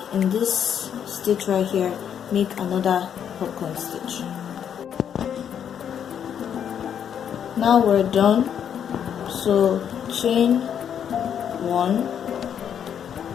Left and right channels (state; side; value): quieter; right; 8.6 dB